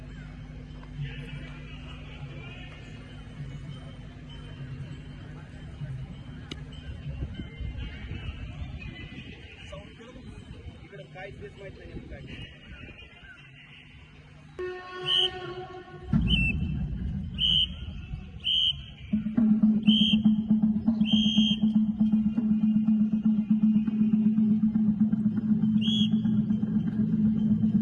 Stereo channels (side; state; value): both; identical; correlation 1.00